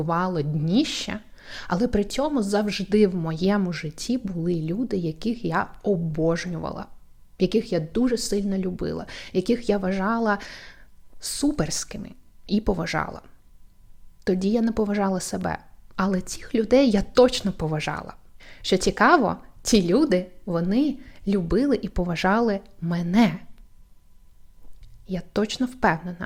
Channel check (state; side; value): identical; both; correlation 1.00